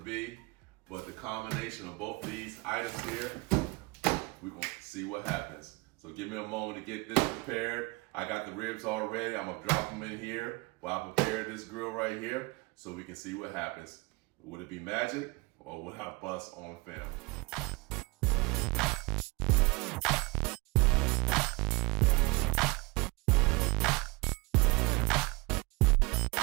but the combination of both of these items here, we're gonna see what happens. So give me a moment to get this prepared. I got the ribs all ready. I'm gonna drop them in here while I prepare this grill right here so we can see what happens. Would it be magic or would I bust on film?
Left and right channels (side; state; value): left; quieter; 25.5 dB